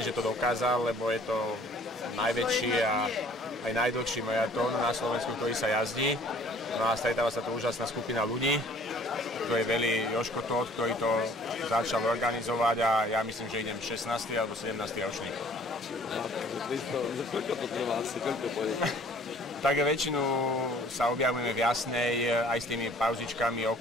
že to dokázal, lebo je to najväčší a aj najdlhší maratón na Slovensku, ktorý sa jazdí. No a stretáva sa tu úžasná skupina ľudí. To je Veli Joško Tóth, ktorý to začal organizovať a ja myslím, že idem 16. alebo 17. ročník. Koľko to trvá asi, koľko pôjde? Tak väčšinu sa objavujeme v Jasnej aj s tými pauzičkami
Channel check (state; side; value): normal; both; correlation 0.54